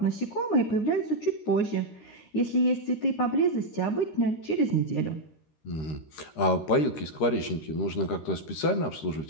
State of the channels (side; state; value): right; late; 13 ms